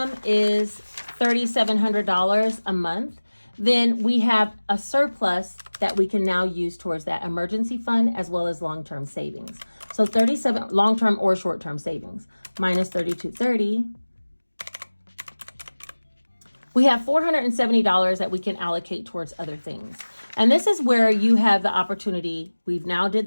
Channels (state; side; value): inverted; both; correlation -1.00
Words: is $3,700 a month, then we have a surplus that we can now use towards that emergency fund as well as long-term savings. So 37 long-term or short-term savings minus 3,230 we have $470 that we can allocate towards other things. And this is where you have the opportunity. We've now did